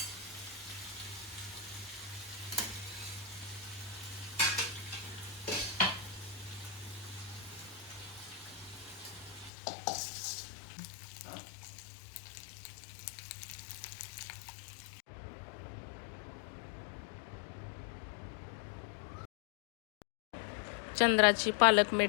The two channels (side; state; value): right; drops out; at 9.5 s